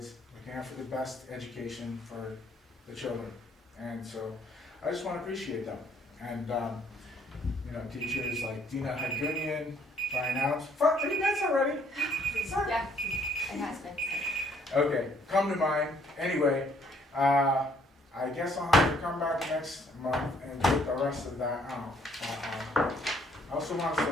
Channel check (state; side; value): normal; both; correlation 0.65